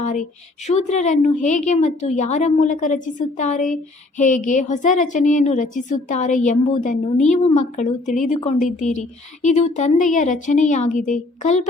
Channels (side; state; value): right; quieter; 3.0 dB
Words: ಶೂದ್ರರನ್ನು ಹೇಗೆ ಮತ್ತು ಯಾರ ಮೂಲಕ ರಚಿಸುತ್ತಾರೆ, ಹೇಗೆ ಹೊಸ ರಚನೆಯನ್ನು ರಚಿಸುತ್ತಾರೆ ಎಂಬುದನ್ನು ನೀವು ಮಕ್ಕಳು ತಿಳಿದುಕೊಂಡಿದ್ದೀರಿ. ಇದು ತಂದೆಯ ರಚನೆಯಾಗಿದೆ.